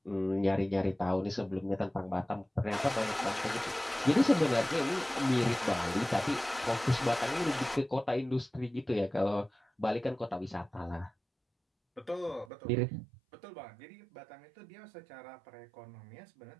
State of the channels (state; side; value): drops out; left; at 12.5 s